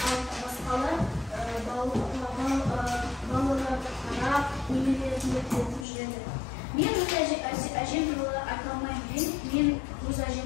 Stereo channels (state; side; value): drops out; right; at 5.9 s